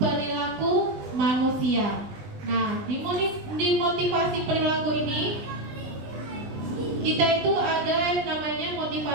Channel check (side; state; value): left; late; 20 ms